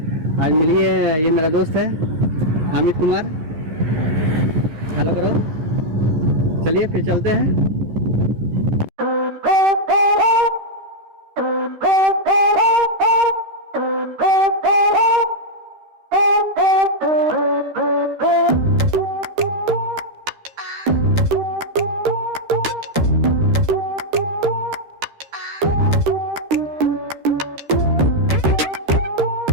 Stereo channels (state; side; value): late; left; 13 ms